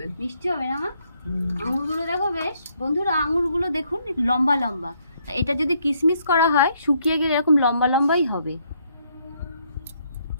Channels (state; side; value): inverted; both; correlation -0.71